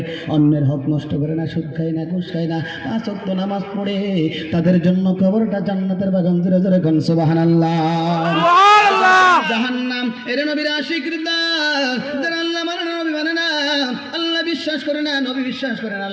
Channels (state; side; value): identical; both; correlation 1.00